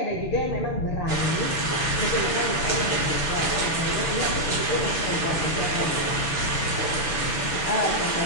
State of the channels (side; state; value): right; late; 6.3 ms